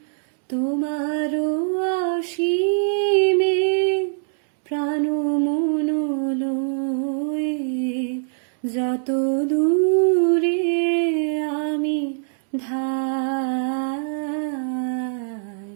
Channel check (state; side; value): silent; left; digital silence